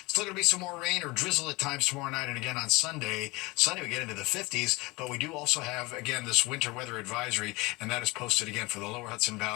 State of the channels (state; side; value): quieter; right; 24.0 dB